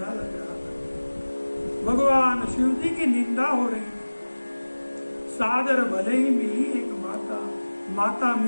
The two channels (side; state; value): both; inverted; correlation -1.00